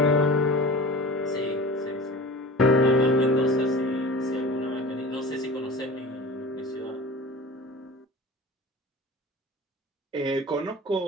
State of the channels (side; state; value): both; normal; correlation 0.36